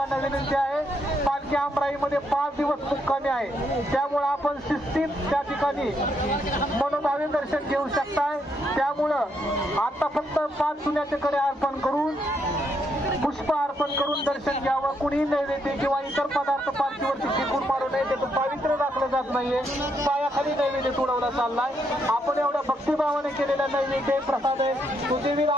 विनंती आहे. पालखी आमराईमध्ये 5 दिवस मुक्कामी आहे, त्यामुळं आपण शिस्तीत त्या ठिकाणी मनोभावे दर्शन घेऊ शकताय. त्यामुळं आता फक्त 5 चुन्याचे कडे अर्पण करून, पुष्प अर्पण करून दर्शन घ्यावं. कुणी नैवेद्य किंवा इतर पदार्थ पालखीवरती फेकून मारू नये, त्याचं पावित्र्य राखलं जात नाहीये. पायाखाली नैवेद्य तुडवला चाललाय. आपण एवढ्या भक्तिभावाने केलेला नैवेद्य प्रसाद आहे, तो देवीला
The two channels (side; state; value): both; normal; correlation 0.76